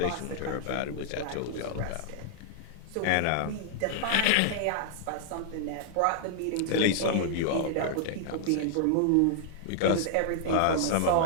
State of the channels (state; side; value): different; both; correlation -0.01